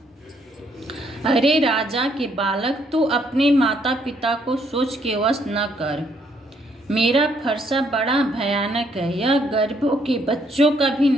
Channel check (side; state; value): both; normal; correlation 0.70